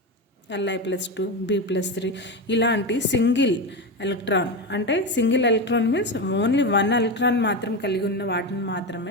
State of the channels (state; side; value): normal; both; correlation 0.17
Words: Li+2, B+3 ఇలాంటి సింగిల్ ఎలక్ట్రాన్, అంటే single electron means only one electron మాత్రం కలిగి ఉన్న వాటిని